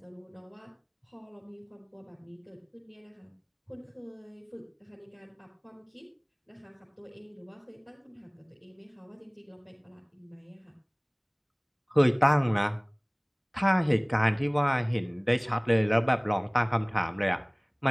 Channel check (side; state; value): both; identical; correlation 1.00